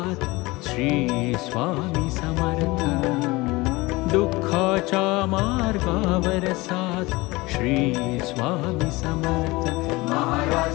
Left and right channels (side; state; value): right; quieter; 22.0 dB